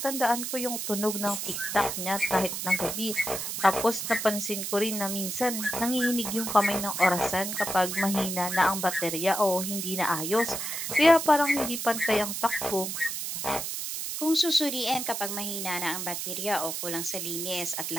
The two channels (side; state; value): right; noise; hiss, 4 dB below the sound